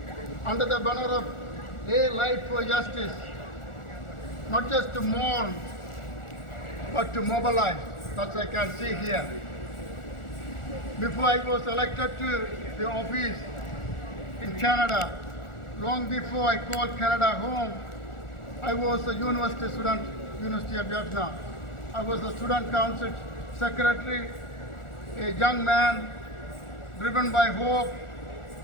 under the banner of A Light for Justice, not just to mourn, but to mobilize, as I can see here. Before I was elected to the office in Canada, long before I called Canada home, I was a university student, University of Vietnam. I was a student council secretary, a young man driven by hope,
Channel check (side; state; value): right; late; 1.4 ms